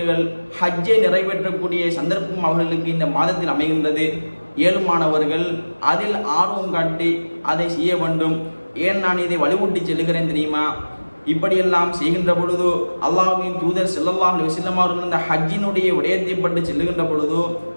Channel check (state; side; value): inverted; both; correlation -1.00